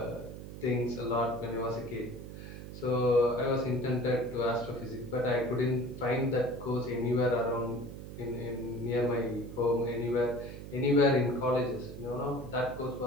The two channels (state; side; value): noise; right; hum, 11 dB below the sound